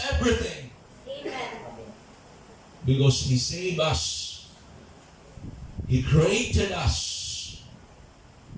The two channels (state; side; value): identical; both; correlation 1.00